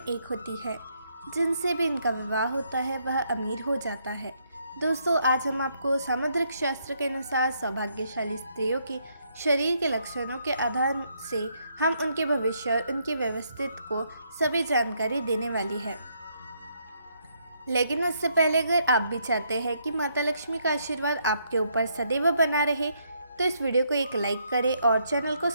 होती है। जिनसे भी इनका विवाह होता है वह अमीर हो जाता है। दोस्तों, आज हम आपको सामुद्रिक शास्त्र के अनुसार सौभाग्यशाली स्त्रियों के शरीर के लक्षणों के आधार से हम उनके भविष्य और उनकी व्यवस्थित को सभी जानकारी देने वाली है। लेकिन उससे पहले अगर आप भी चाहते हैं कि माता लक्ष्मी का आशीर्वाद आपके ऊपर सदैव बना रहे, तो इस वीडियो को एक लाइक करें और चैनल को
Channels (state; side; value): inverted; both; correlation -0.74